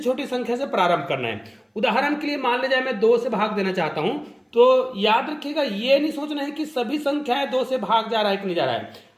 संख्या से प्रारंभ करना है। उदाहरण के लिए मान लीजिए मैं 2 से भाग देना चाहता हूं, तो याद रखिएगा ये नहीं सोचना है कि सभी संख्याएं 2 से भाग जा रहा है कि नहीं जा रहा है।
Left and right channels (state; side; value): identical; both; correlation 1.00